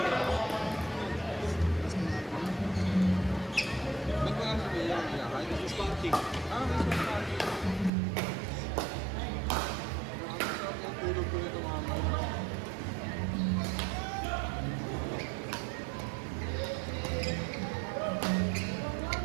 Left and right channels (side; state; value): left; drops out; at 7.9 s